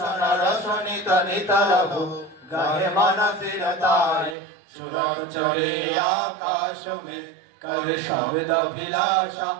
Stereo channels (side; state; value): left; drops out; at 4.4 s